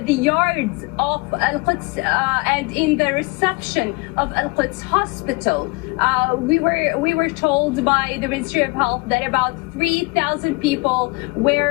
the yards of Al-Quds and in the reception of Al-Quds Hospital. We were told by the Ministry of Health that about 3,000 people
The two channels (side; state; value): right; quieter; 27.2 dB